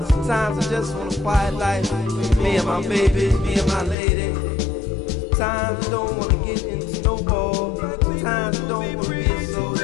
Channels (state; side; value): drops out; right; at 4.0 s